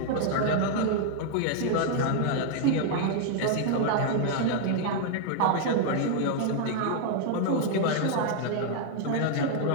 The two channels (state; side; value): different; both; correlation 0.00